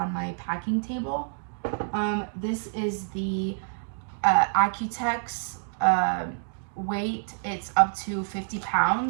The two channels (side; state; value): left; silent; digital silence